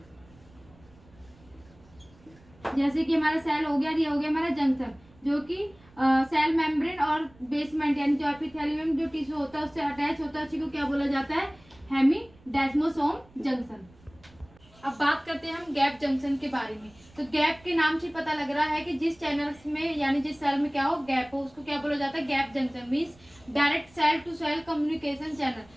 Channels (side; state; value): right; noise; rumble, 27 dB below the sound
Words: जैसे कि हमारा सेल हो गया, ये हो गया हमारा जंक्शन, जो कि सेल मेम्ब्रेन और बेसमेंट यानी जो एपिथेलियम जो टिश्यू होता है उससे अटैच होता है, उसी को क्या बोला जाता है, हेमीडेस्मोसोम जंक्शन। अब बात करते हैं हम गैप जंक्शन के बारे में। तो गैप के नाम से पता लग रहा है कि जिस चैनल्स में यानी जिस सेल में क्या हो, गैप हो, उसको क्या बोला जाता है, gap junction. Means direct cell to cell communication